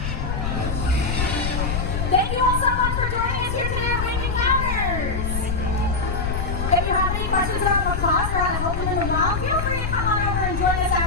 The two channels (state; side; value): noise; left; rumble, 2 dB below the sound